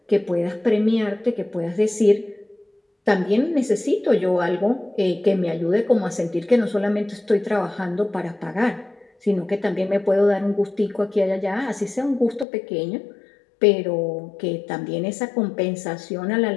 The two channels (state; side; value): drops out; right; at 12.5 s